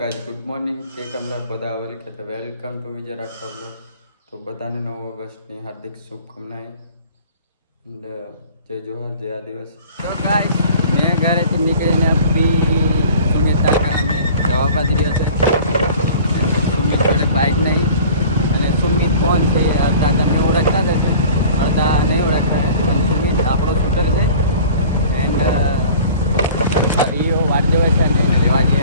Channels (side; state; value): both; inverted; correlation -0.45